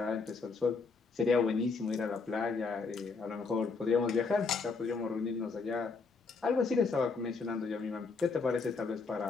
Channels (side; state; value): right; quieter; 4.5 dB